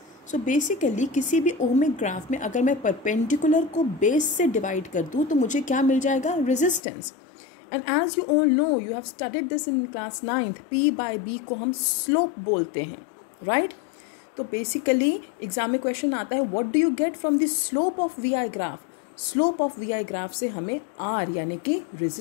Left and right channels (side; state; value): right; drops out; at 6.8 s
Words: सो बेसिकली किसी भी ओमिक ग्राफ में अगर मैं परपेंडिकुलर को बेस से डिवाइड कर दूँ तो मुझे क्या मिल जाएगा, resistance. And as you all know, you have studied this in class 9th, P by B को हम स्लोप बोलते हैं. राइट. तो बेसिकली एग्जाम में क्वेश्चन आता है, what do you get from the slope of V I graph. Slope of V I graph से हमें R यानी कि